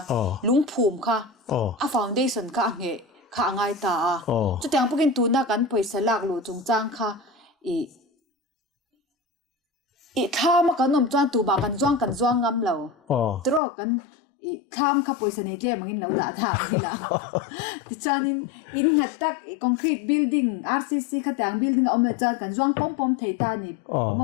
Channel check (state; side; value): drops out; right; at 13.6 s